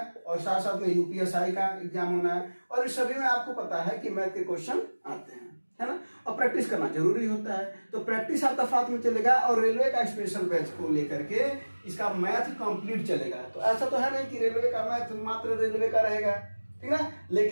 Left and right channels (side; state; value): both; inverted; correlation -1.00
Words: और साथ साथ में यूपीएसआई का एग्जाम होना है। और इस सभी में आपको पता है कि मैथ के क्वेश्चन आते हैं, है ना। और प्रैक्टिस करना जरूरी होता है, तो प्रैक्टिस आपका साथ में चलेगा और रेलवे का स्पेशल बैच को लेकर के इसका मैथ कंप्लीट चलेगा। तो ऐसा तो है नहीं कि रेलवे का मैथ मात्र रेलवे का रहेगा, ठीक है।